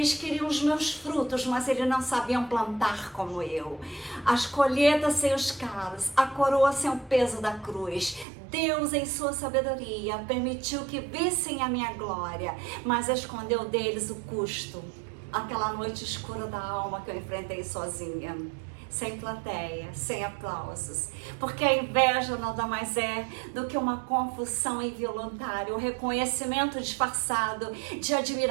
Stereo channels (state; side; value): drops out; left; at 8.2 s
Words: queriam os meus frutos, mas eles não sabiam plantar como eu. As colheitas sem os calos, a coroa sem o peso da cruz. Deus, em sua sabedoria, permitiu que vissem a minha glória, mas escondeu deles o custo. Aquela noite escura da alma que eu enfrentei sozinha, sem plateia, sem aplausos, porque a inveja nada mais é do que uma confusão involuntária, um reconhecimento disfarçado de